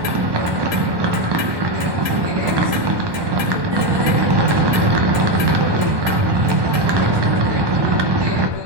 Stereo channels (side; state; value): left; late; 1.2 ms